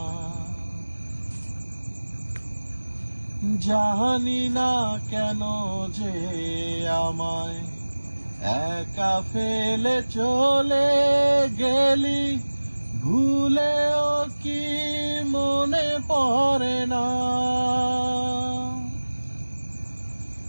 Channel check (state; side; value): inverted; both; correlation -1.00